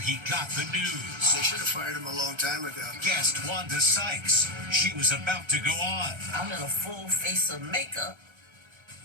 got the news. They should have fired him a long time ago. Guest Wanda Sykes. She was about to go on. I'm in a full face of makeup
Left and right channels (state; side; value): late; left; 1.3 ms